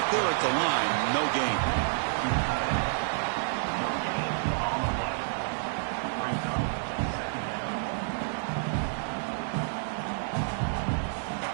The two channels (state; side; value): silent; left; digital silence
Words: there at the line, no gain.